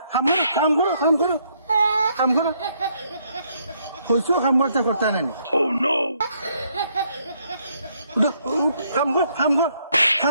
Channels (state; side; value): inverted; both; correlation -0.71